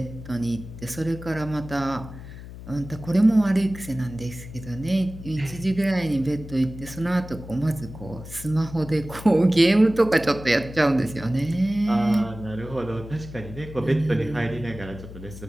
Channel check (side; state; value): left; noise; hum, 13 dB below the sound